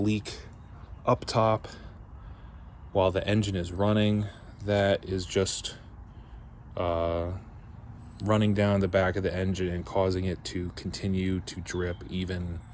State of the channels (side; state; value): both; identical; correlation 1.00